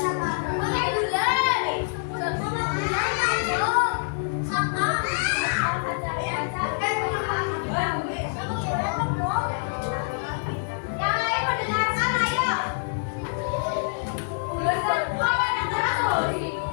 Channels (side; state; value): right; silent; digital silence